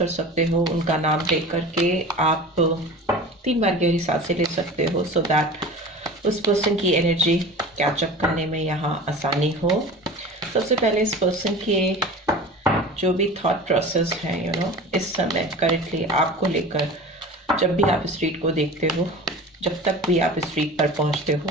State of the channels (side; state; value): both; normal; correlation 0.36